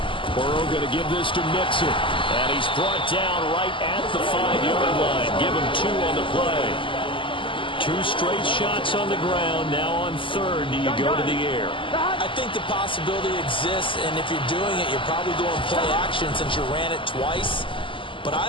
Burrow going to give this to Mixon. And he's brought down right at the 5-yard line. Give him 2 on the play. 2 straight shots on the ground. Now on 3rd, do you go to the air? I think the possibility exists, and if you're doing it, you're probably going play action since you ran it twice. But I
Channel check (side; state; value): right; late; 0.25 ms